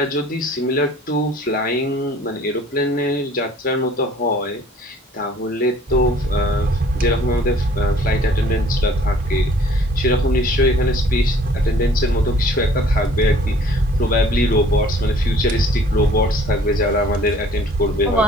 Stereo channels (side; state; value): both; normal; correlation 0.54